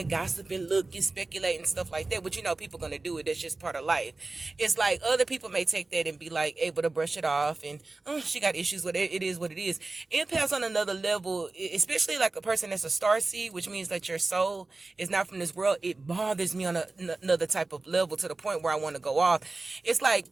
gossip and look and speculate and stuff like that. But people gonna do it. That's just part of life. It's like other people may take that and be like able to brush it off, and oh, she got issues with it. It is what it is. Empaths on another level, especially like a person that's a star seed, which means that your soul is not from this world. It bothers me on another type of level to the point where I want to go off. It's like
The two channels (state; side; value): quieter; left; 3.4 dB